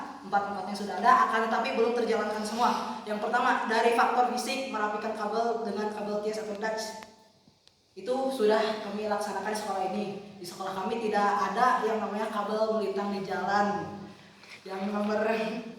Empat-empatnya sudah ada, akan tetapi belum terjalankan semua. Yang pertama dari faktor fisik, merapikan kabel dengan kabel TS atau Dutch. Itu sudah kami laksanakan di sekolah ini. Di sekolah kami tidak ada yang namanya kabel melintang di jalan. Yang nomor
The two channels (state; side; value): identical; both; correlation 1.00